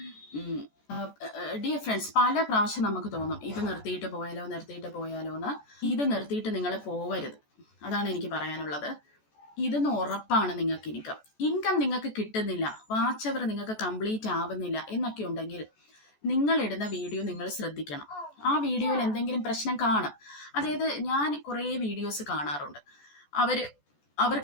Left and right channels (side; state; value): right; late; 14 ms